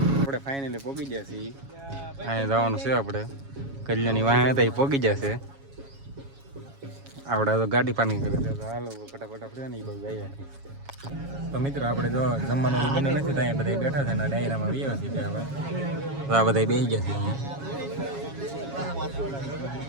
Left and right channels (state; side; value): late; left; 7.3 ms